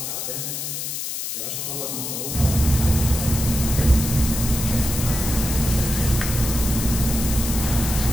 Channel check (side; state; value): left; noise; hiss, 5 dB below the sound